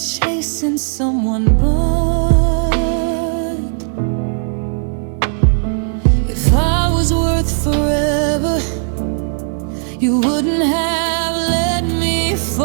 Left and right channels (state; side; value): silent; left; digital silence